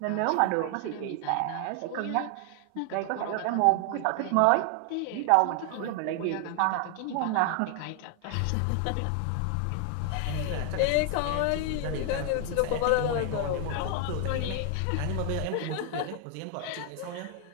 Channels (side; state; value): both; different; correlation 0.00